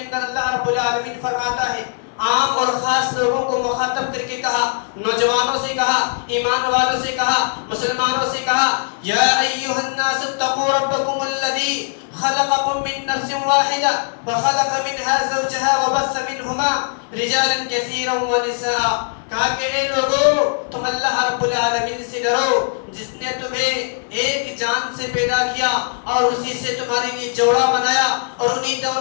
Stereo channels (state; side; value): silent; right; 57 dB below the other